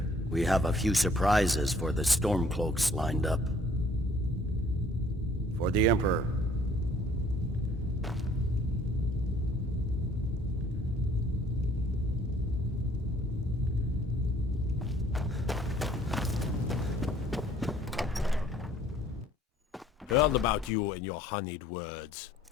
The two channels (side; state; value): both; normal; correlation 0.58